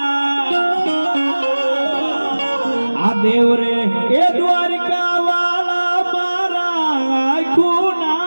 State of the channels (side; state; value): both; inverted; correlation -1.00